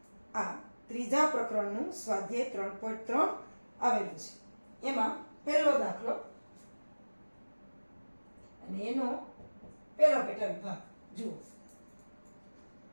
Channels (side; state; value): both; inverted; correlation -1.00